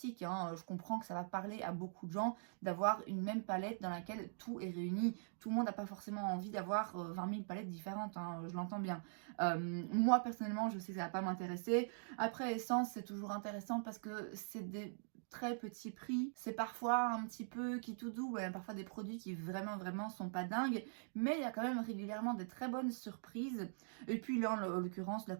hein. Je comprends que ça va parler à beaucoup de gens d'avoir une même palette dans laquelle tout est réuni. Tout le monde n'a pas forcément envie d'avoir 20 000 palettes différentes, hein, je l'entends bien. Moi personnellement, je sais que ça va pas m'intéresser. Après, Essence, c'est toujours intéressant parce que c'est des très petit prix. C'est parfois un petit peu qui tout doux, parfois des produits qui vraiment sont pas dingues, mais il y a quand même régulièrement des très bonnes surprises. Et puis là, en l'occurrence, la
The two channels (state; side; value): silent; left; digital silence